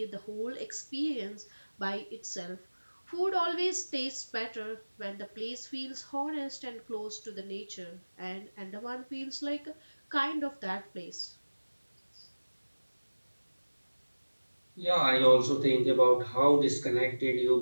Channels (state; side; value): inverted; both; correlation -1.00